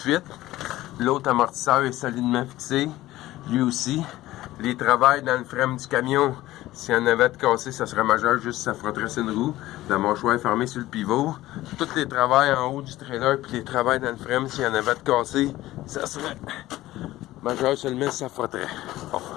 L'autre amortisseur est solidement fixé. Lui aussi. Les travails dans le frein du camion, s'il y en avait de cassé, ça serait majeur, juste ça frotterait sur une roue. La mâchoire est fermée sur le pivot. Tous les travails en haut du trailer, puis les travails dans le frein, s'il y en avait de cassé, ça serait majeur seulement si ça frotterait. Bon.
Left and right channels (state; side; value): quieter; right; 16.2 dB